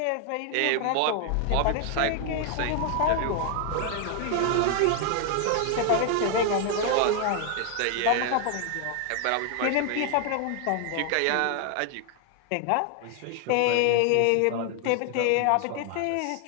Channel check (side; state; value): both; different; correlation 0.00